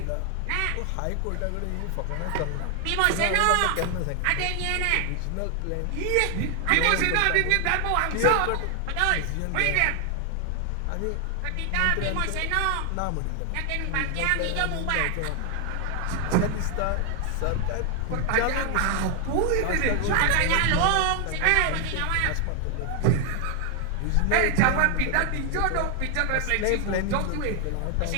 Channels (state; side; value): different; both; correlation 0.00